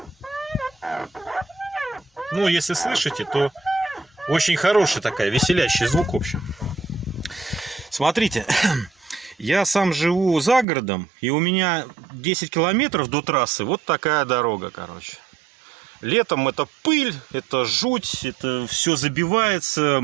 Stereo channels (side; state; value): left; drops out; at 10.7 s